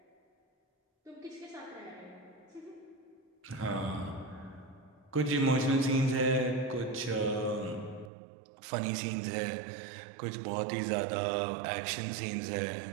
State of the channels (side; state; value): left; drops out; at 8.1 s